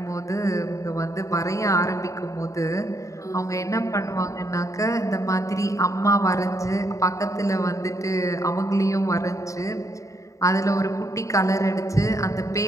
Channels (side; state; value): right; late; 0.16 ms